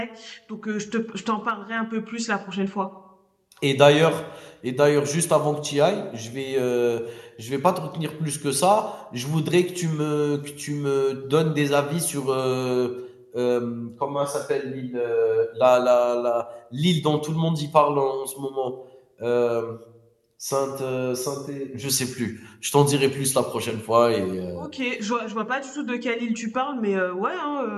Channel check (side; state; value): both; identical; correlation 1.00